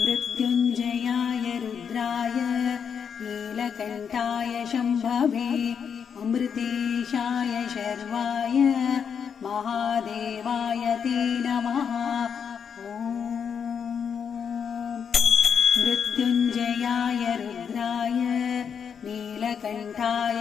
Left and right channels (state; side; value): quieter; right; 7.1 dB